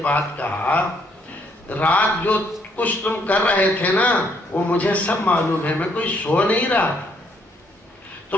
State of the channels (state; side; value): normal; both; correlation 0.70